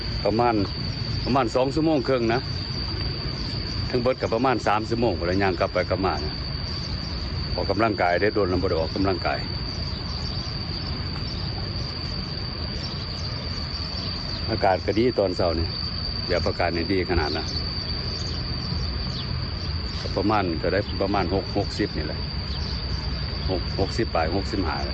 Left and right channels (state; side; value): identical; both; correlation 1.00